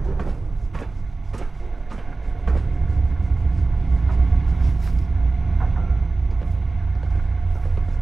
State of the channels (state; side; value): quieter; left; 3.5 dB